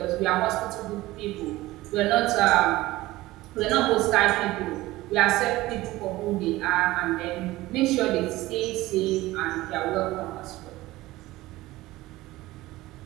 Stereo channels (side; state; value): left; quieter; 18.0 dB